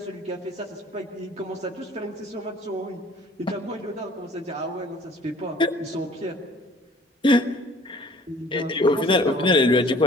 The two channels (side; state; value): both; normal; correlation 0.53